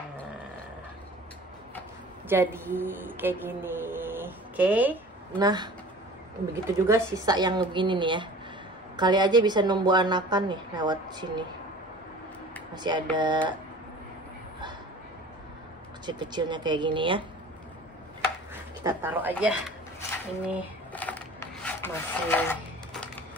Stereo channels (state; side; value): normal; both; correlation 0.43